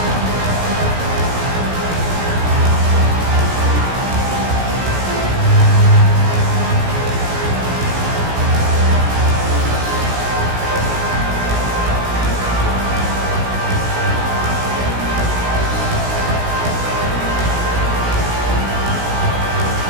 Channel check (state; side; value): late; left; 16 ms